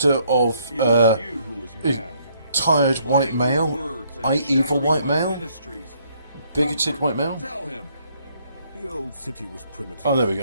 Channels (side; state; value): both; inverted; correlation -0.68